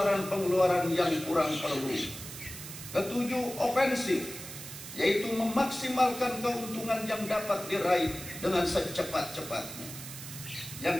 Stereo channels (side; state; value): right; noise; hiss, 11 dB below the sound